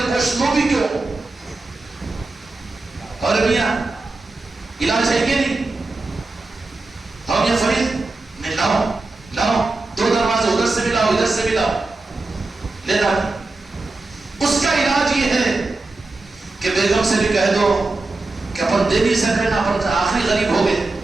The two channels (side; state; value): left; quieter; 3.3 dB